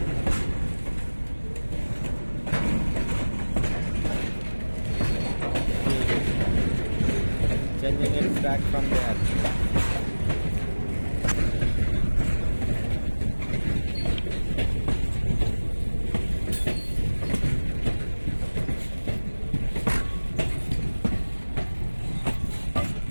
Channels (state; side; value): inverted; both; correlation -1.00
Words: Changing its track from there.